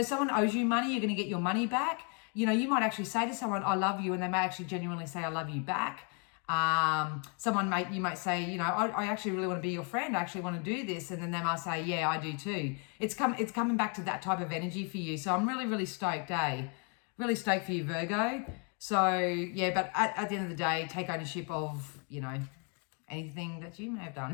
someone owes you money, you're going to get your money back. You know, you might actually say to someone, I love you, and they may actually genuinely say, I love you back. You might say, you know, I actually really want to be your friend. I actually want to do this. And then they might say, yeah, I do too. It's coming back to that type of energy for you. So I'm really, really stoked, Really stoked for you, Virgo. So yeah, but at the end of the day, take ownership of, you know, anything that you may have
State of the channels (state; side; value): quieter; right; 37.5 dB